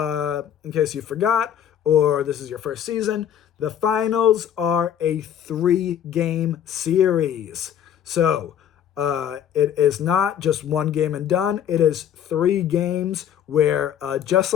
forgot, or this is your first season, the finals are a 3-game series. So it is not just one game and done. It is 3 games where, just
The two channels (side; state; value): right; quieter; 9.6 dB